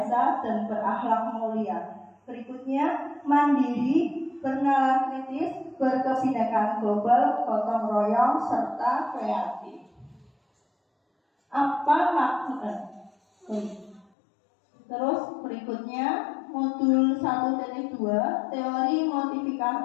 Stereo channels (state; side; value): drops out; right; at 14.1 s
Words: dan berakhlak mulia. Berikutnya, mandiri, bernalar kritis, berkebinekaan global, gotong royong, serta kreatif. Apa makna? Terus berikutnya, modul 1.2, teori